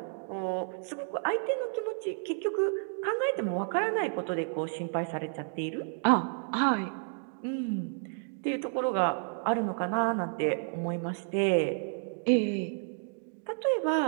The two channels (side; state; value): left; silent; digital silence